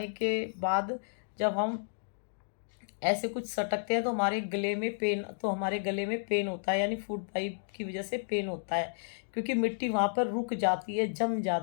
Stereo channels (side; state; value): right; silent; digital silence